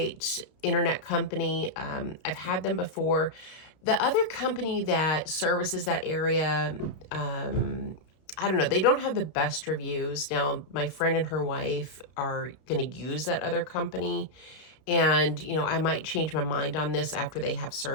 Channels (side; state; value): right; late; 32 ms